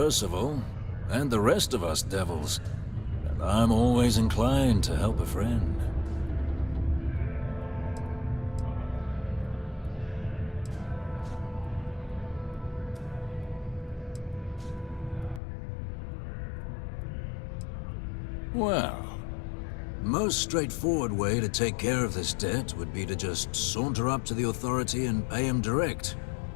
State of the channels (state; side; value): drops out; right; at 15.4 s